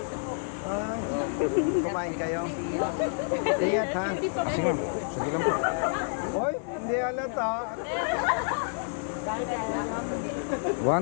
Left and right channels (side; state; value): right; silent; digital silence